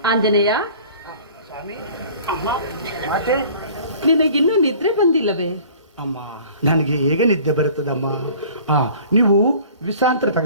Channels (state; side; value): inverted; both; correlation -0.48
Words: ಆಂಜನೇಯ, ನಿನಗಿನ್ನೂ ನಿದ್ರೆ ಬಂದಿಲ್ಲವೇ? ಅಮ್ಮ, ನನಗೆ ಹೇಗೆ ನಿದ್ದೆ ಬರುತ್ತದಮ್ಮ? ನೀವು ವಿಶ್ರಾಂತಿ